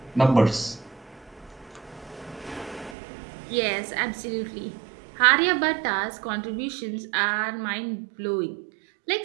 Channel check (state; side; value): drops out; left; at 3.0 s